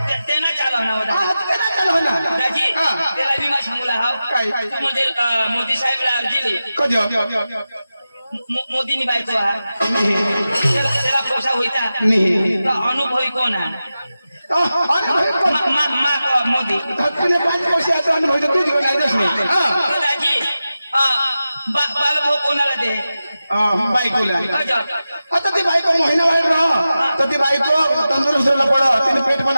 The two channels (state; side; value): inverted; both; correlation -0.93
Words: त्यांना चालवणार होता हा ते ना चालू ना दाजी हा. त्याला बी मा सांगूला हाव काय? तू म्हणजे मोदी साहेबला अर्जी दे कधी मोदीनी बायको हा त्याला पोसा होईता नाही तो अनुभवी कोण आहे अरे भाई कोण मोदी धक्कने 5 वर्ष आता अनुभव तू जीवन आयदच नाही तर दाजी बालभाऊ कोणाला दे बायकोला अजा. आता ती बायको महिना वाढ राह तर ती बायको तंदुरुस्त पड तिने पेट पण